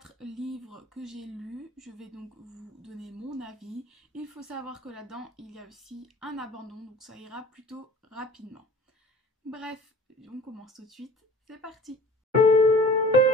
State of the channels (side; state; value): both; normal; correlation 0.45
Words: livres que j'ai lus, je vais donc vous donner mon avis. Il faut savoir que là-dedans il y a aussi un abandon, donc ça ira plutôt rapidement. Bref, on commence tout de suite, c'est parti!